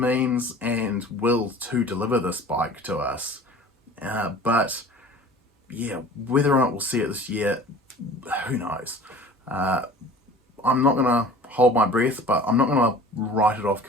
and will to deliver this bike to us, but yeah, whether or not we'll see it this year, who knows. I'm not going to hold my breath, but I'm not going to write it off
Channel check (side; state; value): both; normal; correlation 0.43